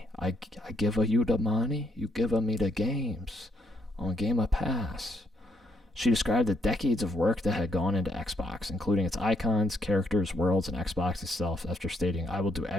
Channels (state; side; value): normal; both; correlation 0.74